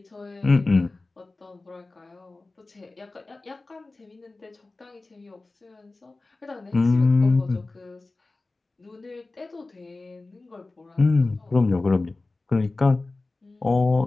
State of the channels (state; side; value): quieter; right; 3.3 dB